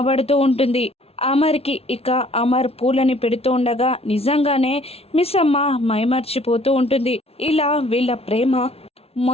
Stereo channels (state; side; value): late; right; 0.29 ms